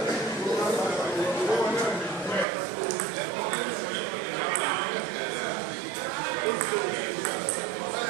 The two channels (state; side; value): drops out; left; at 2.5 s